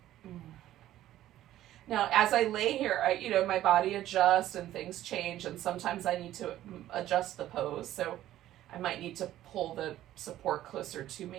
Now, as I lay here, my body adjusts and things change, and sometimes I need to adjust the pose. So I might need to pull the support closer to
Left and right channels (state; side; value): quieter; left; 13.5 dB